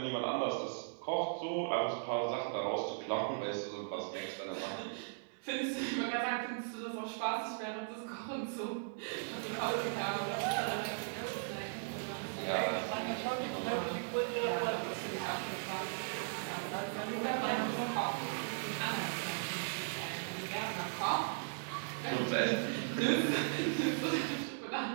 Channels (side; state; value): left; silent; digital silence